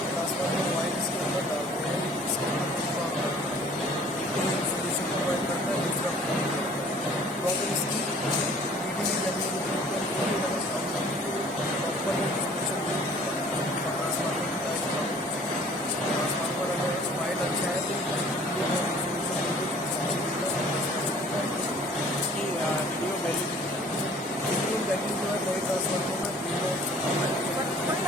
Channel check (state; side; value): normal; both; correlation 0.53